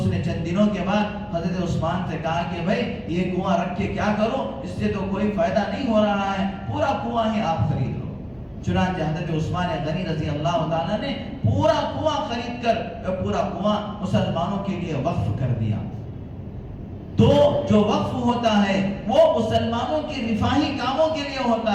نے چند دنوں کے بعد حضرت عثمان سے کہا کہ بھائی یہ کنواں رکھ کے کیا کرو، اس سے تو کوئی فائدہ نہیں ہو رہا ہے، پورا کنواں ہی آپ خرید لو۔ چنانچہ حضرت عثمان غنی رضی اللہ تعالیٰ نے پورا کنواں خرید کر پورا کنواں مسلمانوں کے لیے وقف کر دیا۔ تو جو وقف ہوتا ہے وہ مسلمانوں کے رفاہی کاموں کے لیے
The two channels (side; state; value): both; identical; correlation 1.00